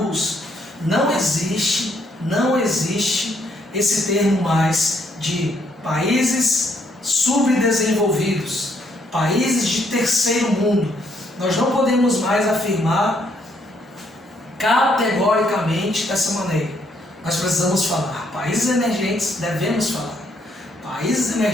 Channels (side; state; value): both; normal; correlation 0.71